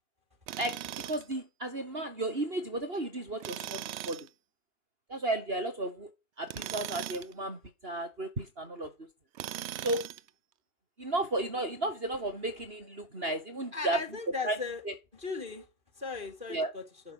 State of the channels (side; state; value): left; late; 3.2 ms